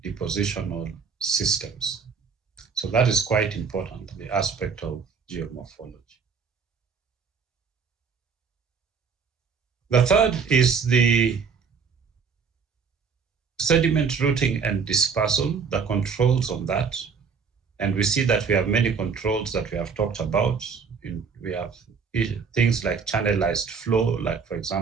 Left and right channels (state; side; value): quieter; left; 5.8 dB